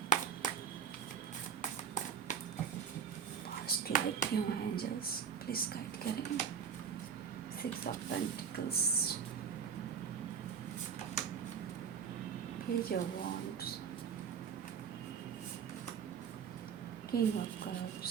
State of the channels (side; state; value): left; quieter; 7.2 dB